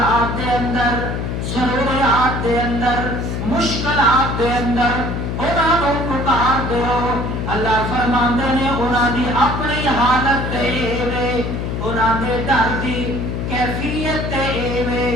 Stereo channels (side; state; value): left; noise; hum, 3 dB below the sound